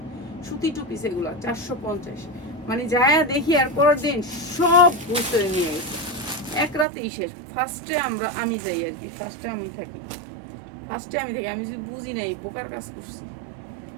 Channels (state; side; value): drops out; left; at 6.9 s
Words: সুতি টু পিস এগুলা 450। মানে যায় দেখি আর পরের দিন সব বুঝতে নিয়ে গেছে, এক রাতেই শেষ। আমি যাই আর কি, ফার্স্টে আমি থাকি, আমি যদি বুঝি নাই বোকার কাজ করছি,